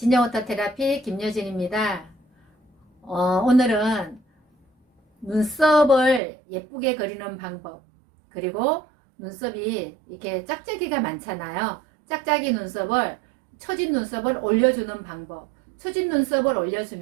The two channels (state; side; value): drops out; left; at 6.2 s